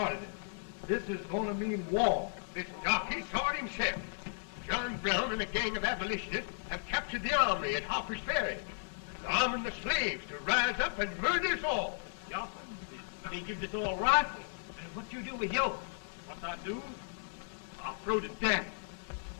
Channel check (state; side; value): silent; right; digital silence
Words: it. This is going to mean war. This jockey saw it himself. John Brown and a gang of abolitionists have captured the armory at Harper's Ferry. They're arming the slaves to rise up and murder us all. Yup. They give us all rifles. And what you do with yours? What I do? I'll throw the damn.